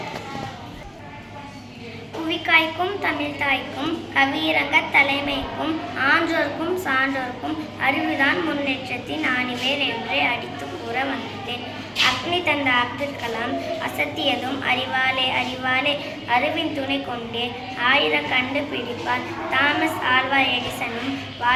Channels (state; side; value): identical; both; correlation 1.00